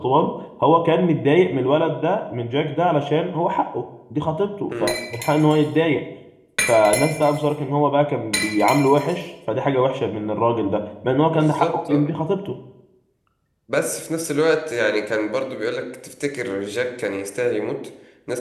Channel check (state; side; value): identical; both; correlation 1.00